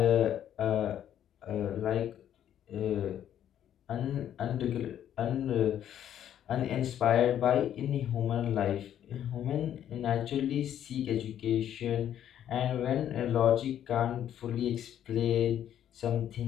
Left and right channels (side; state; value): right; quieter; 10.5 dB